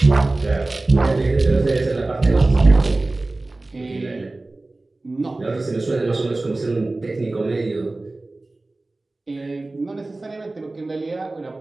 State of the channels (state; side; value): quieter; left; 3.0 dB